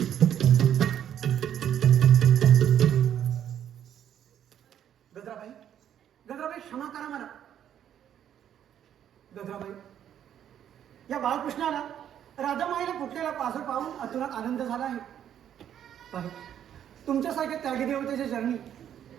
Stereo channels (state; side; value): quieter; left; 9.9 dB